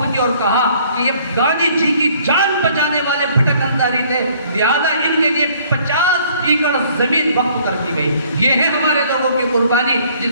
کی اور کہا کہ یہ گاندھی جی کی جان بچانے والے بھٹک انصاری تھے، لہذا ان کے لیے 50 ایکڑ زمین وقف کر دی گئی۔ یہ ہے ہمارے لوگوں کی قربانی جس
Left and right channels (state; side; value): inverted; both; correlation -0.59